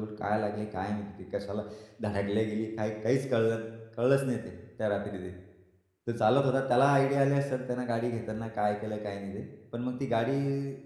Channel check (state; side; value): identical; both; correlation 1.00